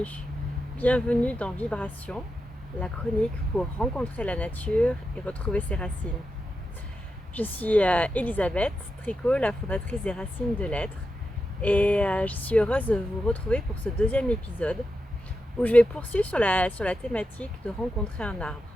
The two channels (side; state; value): both; normal; correlation 0.88